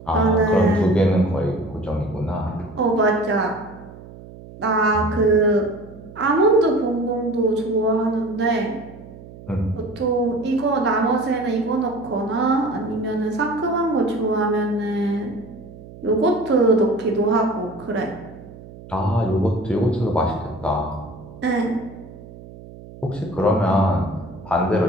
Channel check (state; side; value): noise; right; hum, 17 dB below the sound